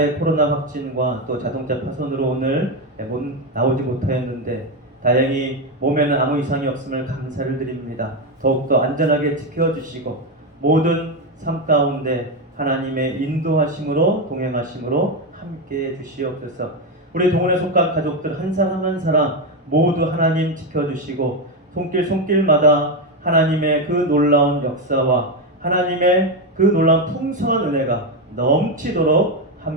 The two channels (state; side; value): normal; both; correlation 0.10